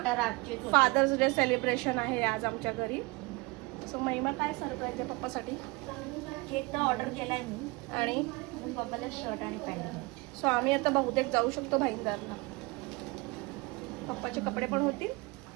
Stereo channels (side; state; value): left; quieter; 25.2 dB